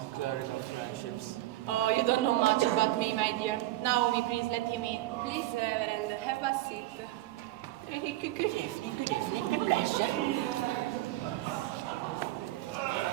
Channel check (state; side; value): quieter; left; 16.5 dB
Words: clerical friendships. Oh, you don't know much about me, my dear. Naomi, please let him in. Please, Reverend, have a seat. Good evening, the pleasure.